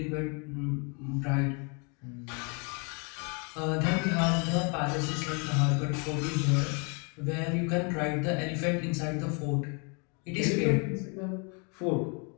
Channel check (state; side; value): quieter; right; 34.8 dB